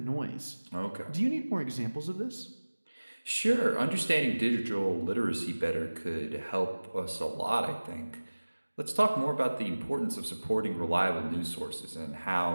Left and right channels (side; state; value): both; inverted; correlation -1.00